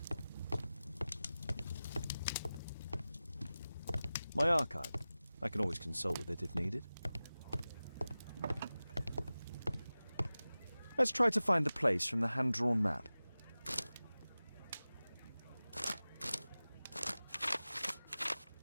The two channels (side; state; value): both; inverted; correlation -0.96